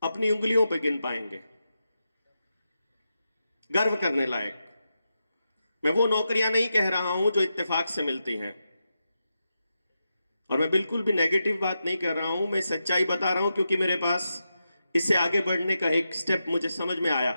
अपनी उंगलियों पर गिन पाएंगे। गर्व करने लायक, मैं वो नौकरियां नहीं कह रहा हूं जो इत्तेफाक से मिलती हैं, और मैं बिल्कुल भी नेगेटिव बात नहीं कर रहा हूं, मैं सच्चाई बता रहा हूं, क्योंकि मेरे पास इससे आगे बढ़ने का एक स्टेप मुझे समझ में आया।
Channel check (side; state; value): both; inverted; correlation -0.88